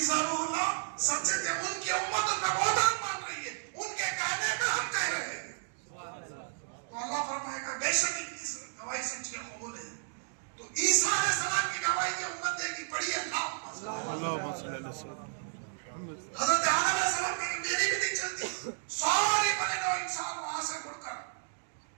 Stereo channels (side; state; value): left; silent; digital silence